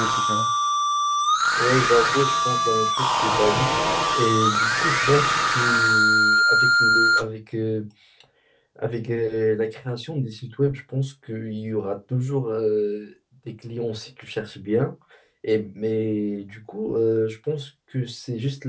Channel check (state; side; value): identical; both; correlation 1.00